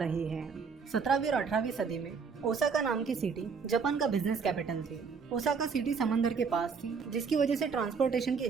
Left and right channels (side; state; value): left; quieter; 5.6 dB